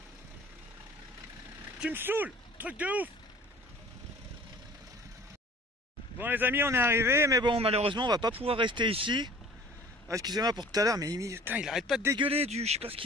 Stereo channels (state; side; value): normal; both; correlation 0.47